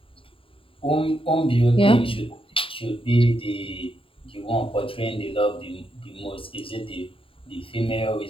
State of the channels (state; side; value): late; right; 0.26 ms